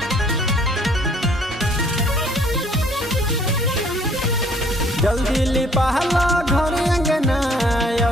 जल्दी लिपाला घर अंगना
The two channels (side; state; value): both; normal; correlation 0.60